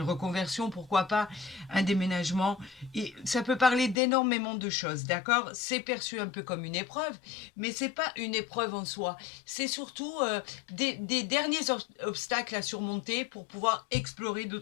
reconversion, pourquoi pas, un déménagement. Et ça peut parler d'énormément de choses, d'accord? C'est perçu un peu comme une épreuve, mais c'est pas une épreuve en soi. C'est surtout des derniers obstacles à surmonter pour pouvoir explorer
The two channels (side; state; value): right; drops out; at 4.0 s